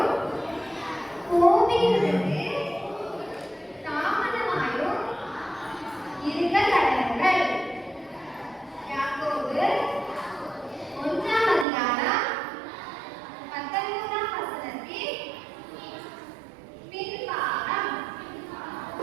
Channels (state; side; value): drops out; left; at 11.7 s